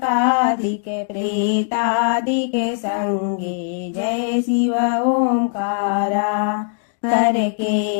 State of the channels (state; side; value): silent; right; 66 dB below the other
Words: प्रेतादिक संगे। जय शिव ओंकारा। कर